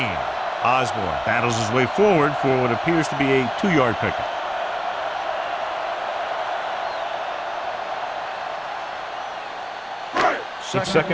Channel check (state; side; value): identical; both; correlation 1.00